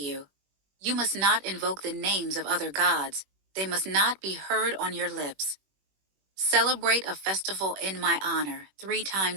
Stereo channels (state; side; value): late; left; 21 ms